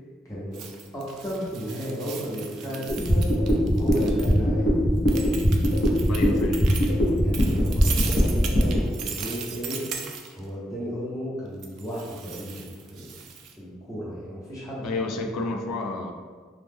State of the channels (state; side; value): normal; both; correlation 0.84